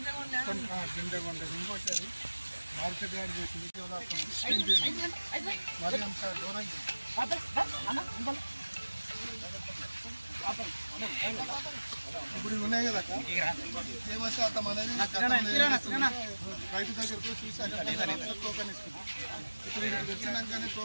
వరకు ఇంకోటి అది మార్కెట్ యాడ్ చేసి మరి అంత దూరంగా ఇప్పుడు ఉన్నాయి కదా తేమ శాతం అనేది రైతు దగ్గరకు చూసి టోకన్ ఇస్తుంది. ఇప్పుడు ఇక్కడికి వచ్చినాకనే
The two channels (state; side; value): inverted; both; correlation -1.00